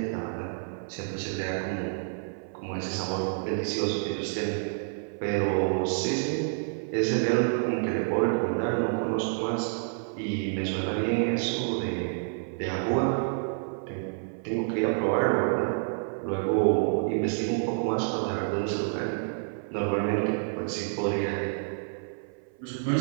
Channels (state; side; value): silent; left; 55 dB below the other